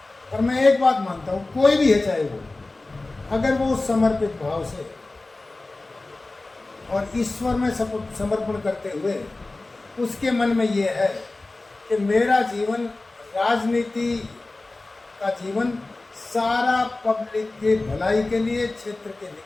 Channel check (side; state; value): right; quieter; 3.1 dB